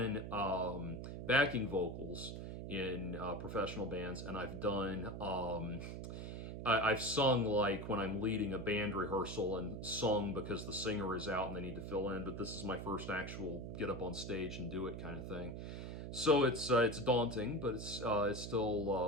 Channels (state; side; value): noise; right; hum, 7 dB below the sound